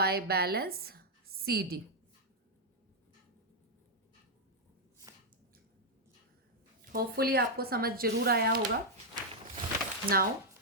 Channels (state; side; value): normal; both; correlation -0.04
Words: बैलेंस CD। होपफुली आपको समझ जरूर आया होगा। Now